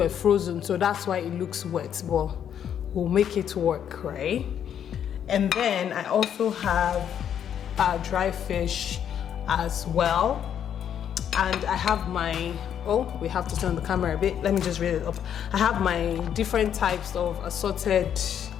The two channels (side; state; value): right; quieter; 9.1 dB